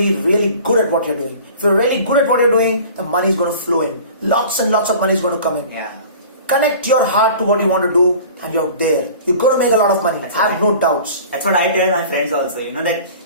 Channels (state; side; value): inverted; both; correlation -0.43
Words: really good at what you're doing. If you're really good at what you're doing, the money is going to flow in. Lots and lots of money is going to come in. Yeah. Connect your heart to what you want to do and you're there. You're going to make a lot of money. Have no doubts. That's what I tell my friends also. That